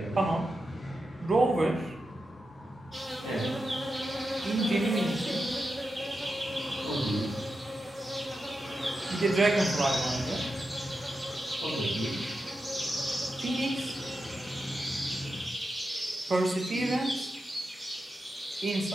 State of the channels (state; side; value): normal; both; correlation 0.89